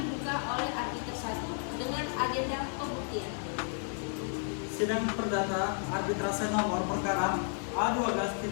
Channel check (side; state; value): right; silent; 55 dB below the other